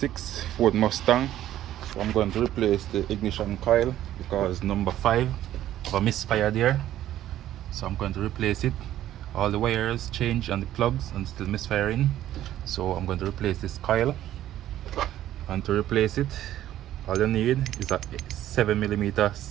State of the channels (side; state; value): left; quieter; 12.7 dB